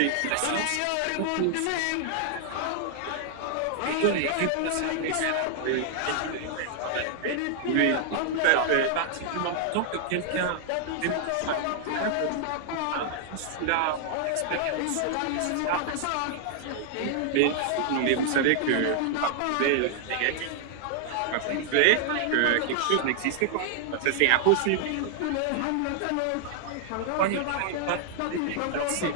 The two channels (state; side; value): different; both; correlation 0.00